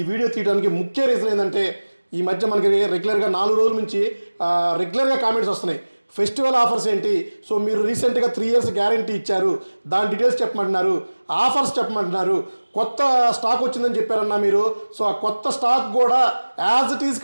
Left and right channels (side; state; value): both; inverted; correlation -1.00